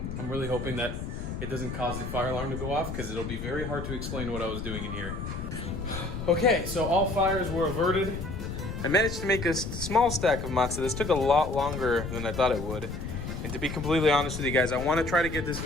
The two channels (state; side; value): noise; left; rumble, 6 dB below the sound